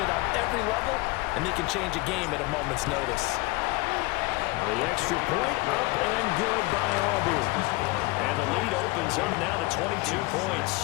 on every level, and they can change a game at a moment's notice. The extra point up and good by Auburn. And the lead opens up now to 22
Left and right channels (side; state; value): right; quieter; 23.1 dB